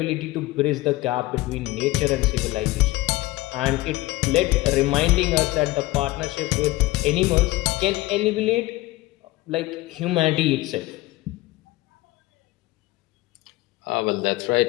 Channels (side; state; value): right; quieter; 18.7 dB